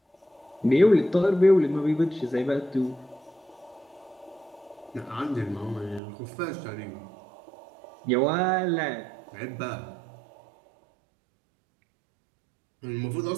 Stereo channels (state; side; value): drops out; left; at 6.0 s